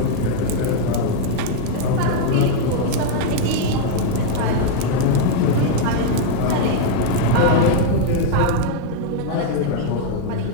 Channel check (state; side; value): different; both; correlation 0.00